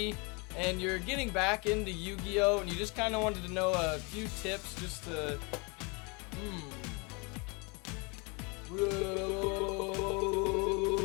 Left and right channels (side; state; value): right; quieter; 30.7 dB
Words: and you're getting back into Yu-Gi-Oh and you just kind of wanted to know a few tips just to